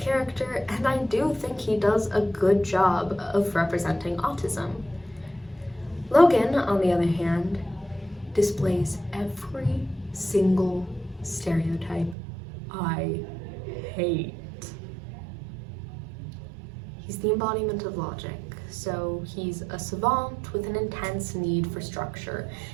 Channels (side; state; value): left; drops out; at 12.2 s